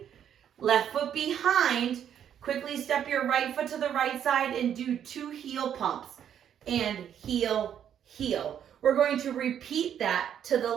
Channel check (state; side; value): quieter; left; 9.3 dB